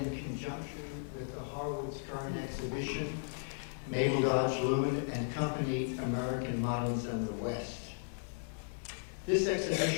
conjunction with the Harwood's current exhibition, Mabel Dodge Luhan and Company, American Moderns and the West. This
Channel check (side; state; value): right; silent; digital silence